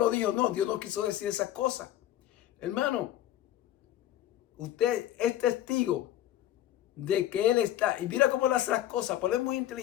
dijo, no, Dios no quiso decir esas cosas. Hermano, usted es testigo de que Él está, y mira cómo Él hace las cosas, porque Él es muy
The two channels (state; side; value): quieter; right; 12.8 dB